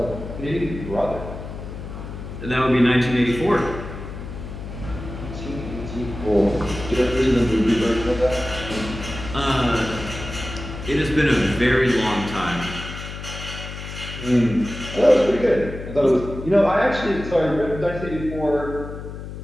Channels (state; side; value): noise; left; hum, 10 dB below the sound